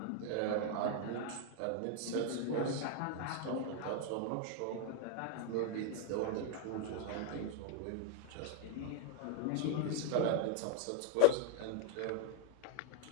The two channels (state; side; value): different; both; correlation 0.00